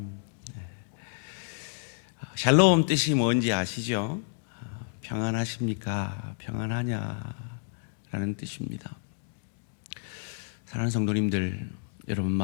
샬롬 뜻이 뭔지 아시죠? 평안하십니까? 평안하냐라는 뜻입니다. 사랑하는 성도님들, 여러분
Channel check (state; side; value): silent; right; digital silence